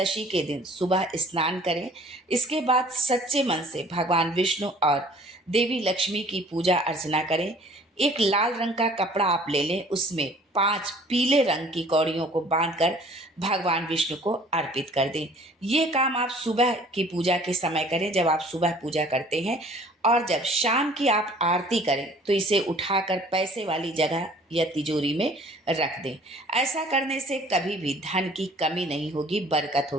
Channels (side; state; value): both; normal; correlation 0.53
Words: के दिन सुबह स्नान करें। इसके बाद सच्चे मन से भगवान विष्णु और देवी लक्ष्मी की पूजा अर्चना करें। एक लाल रंग का कपड़ा आप ले लें, उसमें 5 पीले रंग की कौड़ियों को बांधकर भगवान विष्णु को अर्पित कर दें। ये काम आप सुबह की पूजा के समय करें, जब आप सुबह पूजा करते हैं, और जब शाम की आप आरती करें तो इसे उठाकर पैसे वाली जगह या तिजोरी में रख दें। ऐसा करने से कभी भी धन की कमी नहीं होगी, बरकत